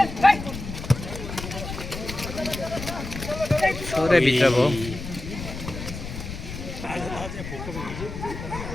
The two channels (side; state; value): left; noise; rumble, 8 dB below the sound